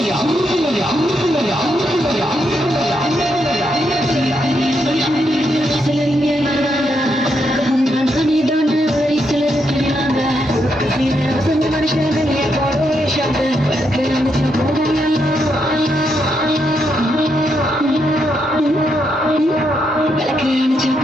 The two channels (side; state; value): both; normal; correlation 0.79